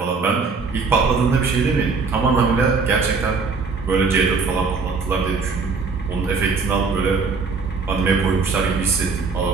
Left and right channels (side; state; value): left; quieter; 4.6 dB